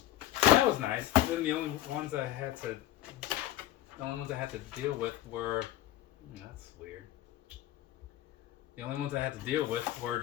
That was nice. Then the only ones I had to deal with were, that's weird. The only ones I had to deal with were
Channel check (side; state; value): right; quieter; 14.1 dB